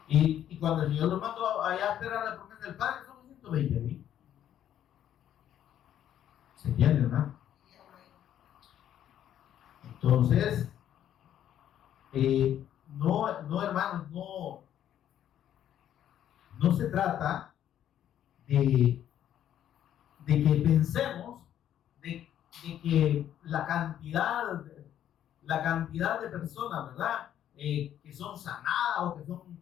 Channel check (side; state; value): right; quieter; 10.7 dB